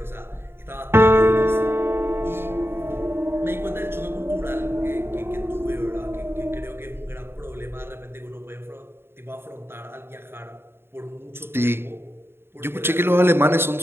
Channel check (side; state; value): left; late; 0.11 ms